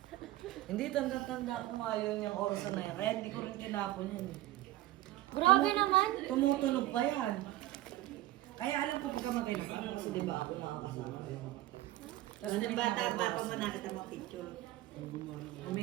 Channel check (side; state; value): left; quieter; 15.9 dB